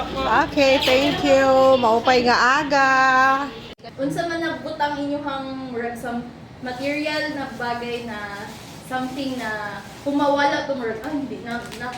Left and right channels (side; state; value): both; identical; correlation 1.00